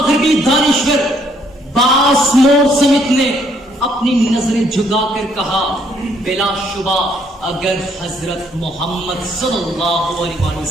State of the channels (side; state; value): both; normal; correlation 0.68